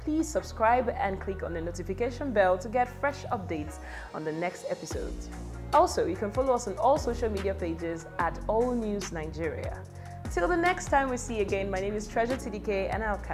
Please subscribe and click on the notification bell to get fresh updates on the next episode. Also, you can follow us on all social media pages at All News Nigeria. Till the next time we see you again, my name is Treasure TDK, and I'll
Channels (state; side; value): identical; both; correlation 1.00